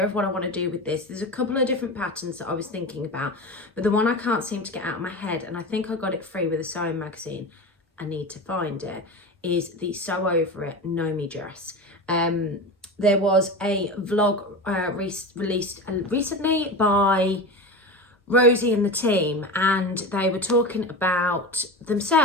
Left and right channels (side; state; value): both; normal; correlation 0.26